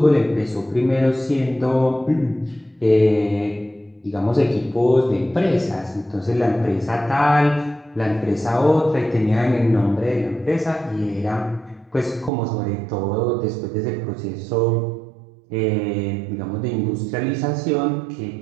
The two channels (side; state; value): left; drops out; at 12.3 s